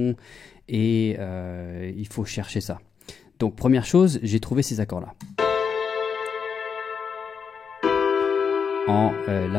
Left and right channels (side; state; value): right; quieter; 6.3 dB